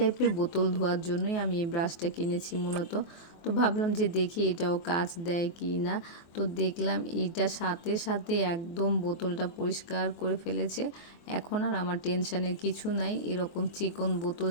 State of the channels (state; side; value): late; right; 23 ms